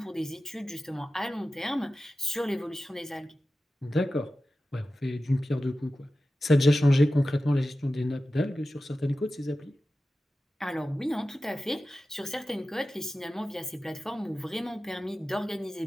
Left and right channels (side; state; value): both; normal; correlation 0.94